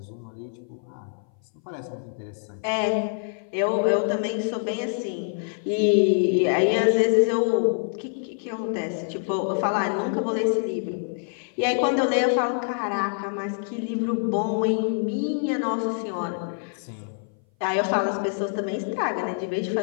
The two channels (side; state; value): right; silent; 58 dB below the other